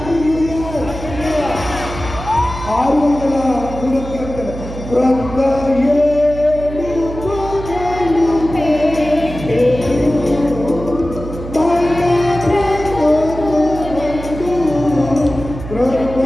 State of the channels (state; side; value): noise; right; hum, 10 dB below the sound